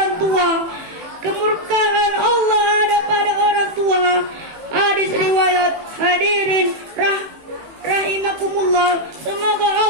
tua, kemurkaan Allah ada pada orang tua. Hadis riwayat. Hadirin rahimakumullah, semoga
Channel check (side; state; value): left; late; 18 ms